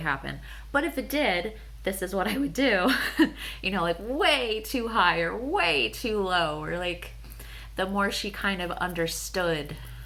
But if it did, this is what I would do. Like way too high or way too low, or like the more she kind of understood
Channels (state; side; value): identical; both; correlation 1.00